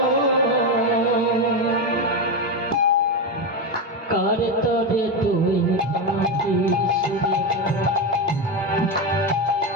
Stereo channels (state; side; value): normal; both; correlation 0.12